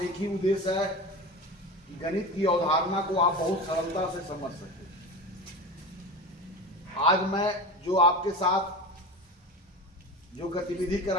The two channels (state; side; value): normal; both; correlation 0.28